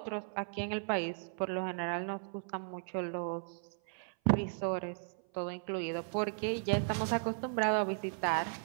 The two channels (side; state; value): left; silent; 54 dB below the other